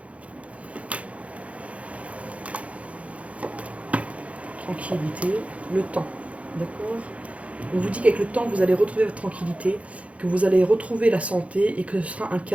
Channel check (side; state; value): left; late; 0.064 ms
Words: Tranquillité, le temps. D'accord. On vous dit qu'avec le temps, vous allez retrouver votre tranquillité, que vous allez retrouver la santé et que ce sera un